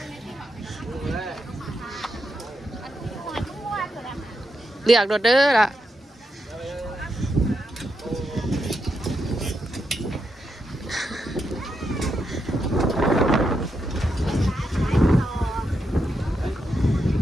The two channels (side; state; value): both; normal; correlation 0.84